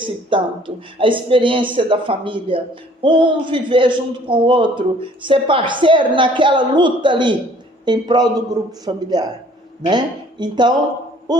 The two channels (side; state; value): both; normal; correlation 0.56